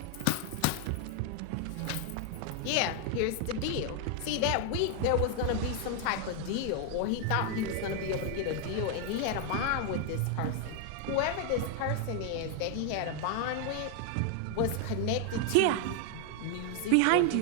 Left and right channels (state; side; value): different; both; correlation 0.00